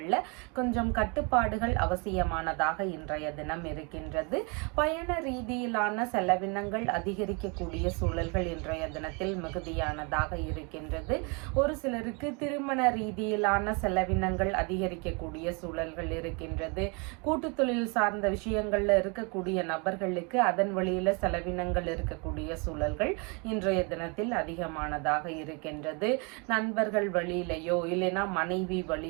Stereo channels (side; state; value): left; quieter; 32.1 dB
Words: கொஞ்சம் கட்டுப்பாடுகள் அவசியமானதாக இன்றைய தினம் இருக்கின்றது. பயண ரீதியிலான செலவினங்கள் அதிகரிக்க அதிகரிக்கக்கூடிய சூழல்கள் இன்றைய தினத்தில் மிகுதியானதாக இருக்கின்றது. ஒரு சிலருக்கு திருமண ரீதியிலான செலவினங்கள் அதிகரிக்கக்கூடிய சூழல்கள் இருக்கின்றது. கூட்டு தொழில் சார்ந்த விஷயங்கள்ல இருக்கக்கூடிய நபர்களுக்கு அதன் வழியில செலவினங்கள் இருக்கக்கூடிய சூழல்கள் இன்றைய தினத்தில் அதிகமானதாக இருக்கின்றது. நண்பர்கள் வழியிலையோ இல்லைன்னா மனைவி